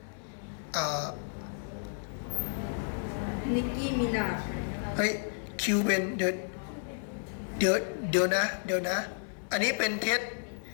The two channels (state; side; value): silent; right; 56 dB below the other